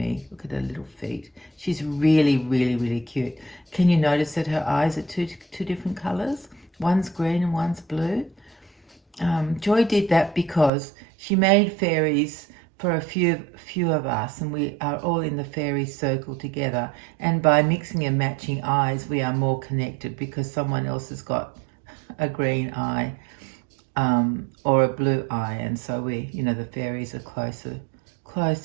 Look at her little feet. She's really, really, really cute. Can you notice that her eyes are two different colours? One's green and one's blue. Joy did that because she made fairies for a few of us, and we are all in the fairy circle together. And by mixing and matching eyes, we are more connected because someone else has got a green eye or a blue eye, and so the fairies are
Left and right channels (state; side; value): drops out; left; at 10.7 s